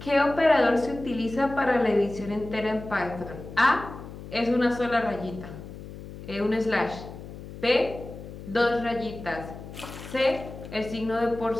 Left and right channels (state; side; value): noise; left; hum, 13 dB below the sound